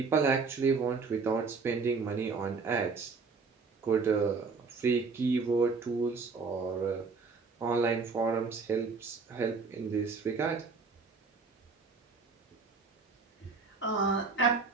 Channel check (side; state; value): left; quieter; 4.6 dB